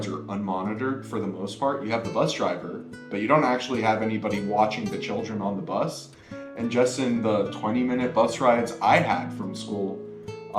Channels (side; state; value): both; identical; correlation 1.00